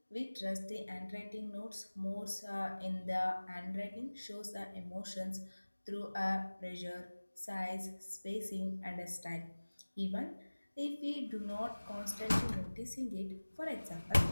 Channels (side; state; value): both; inverted; correlation -1.00